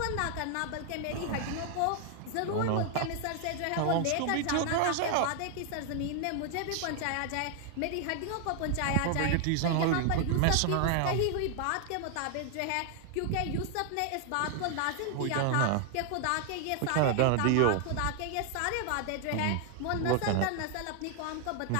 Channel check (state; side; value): different; both; correlation 0.00